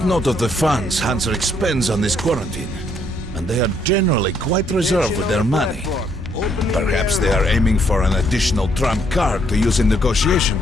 note of the funds Hansa expends on this quarantine. And they are generally quite reserved with their money. Perhaps they are aiming for an additional trump card to use in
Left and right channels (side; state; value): both; normal; correlation 0.70